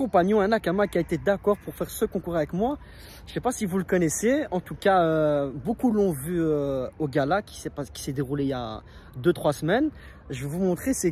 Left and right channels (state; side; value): identical; both; correlation 1.00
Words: un Nakama qui a été d'accord pour faire ce concours avec moi. Je ne sais pas si vous le connaissez, en tout cas beaucoup l'ont vu au gala qui s'est déroulé il y a 2-3 semaines. Je vais vous montrer c'est